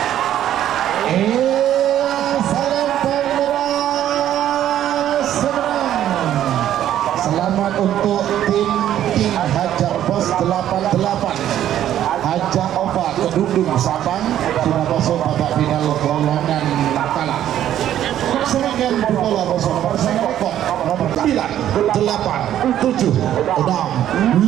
Untuk tim Hajar Bos 88 Hajar Oba Kedungdung Sabang sudah masuk babak final golongan kalah. Sebagian bola bersama bersama rekor nomor 9, 8, 7, 6,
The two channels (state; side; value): quieter; left; 11.5 dB